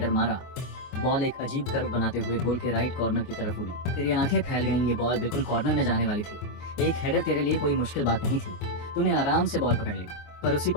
मारा। बॉल एक अजीब कर्व बनाते हुए गोल के राइट कॉर्नर की तरफ उड़ी। तेरी आंखें फैल गईं, ये बॉल बिल्कुल कॉर्नर में जाने वाली थी। एक हेडर तेरे लिए कोई मुश्किल बात नहीं थी। तूने आराम से बॉल पकड़ ली, पर उसी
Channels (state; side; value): late; right; 24 ms